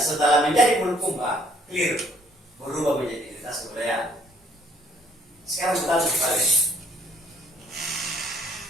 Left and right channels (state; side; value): normal; both; correlation 0.62